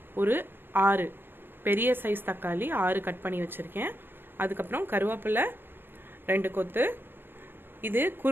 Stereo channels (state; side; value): late; left; 0.10 ms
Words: ஒரு 6 பெரிய சைஸ் தக்காளி 6 கட் பண்ணி வச்சுருக்கேன். அதுக்கப்புறம் கருவேப்பிலை 2 கொத்து. இது